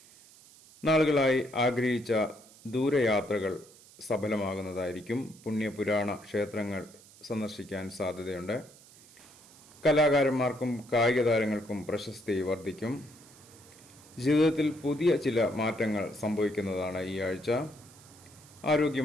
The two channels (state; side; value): noise; right; hiss, 23 dB below the sound